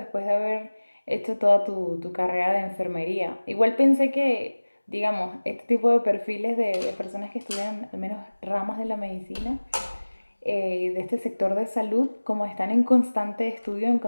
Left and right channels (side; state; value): both; inverted; correlation -1.00